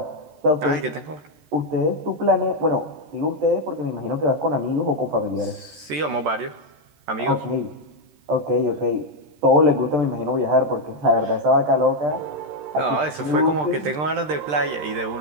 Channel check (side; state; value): left; late; 13 ms